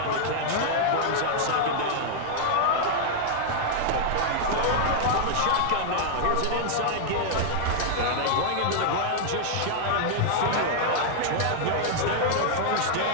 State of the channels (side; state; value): both; different; correlation -0.01